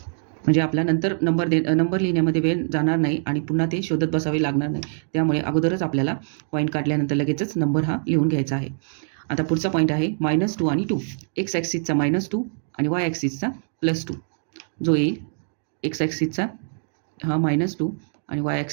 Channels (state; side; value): silent; left; digital silence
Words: म्हणजे आपला नंतर नंबर लिहिण्यामध्ये वेळ जाणार नाही आणि पुन्हा ते शोधत बसावे लागणार नाही. त्यामुळे अगोदरच आपल्याला पॉईंट काढल्यानंतर लगेचच नंबर हा लिहून घ्यायचा आहे. आता पुढचा पॉईंट आहे -2 आणि 2. एक्स ॲक्सिसचा -2 आणि वाय ॲक्सिसचा +2 जो येईल. एक्स ॲक्सिसचा हा -2 आणि वाय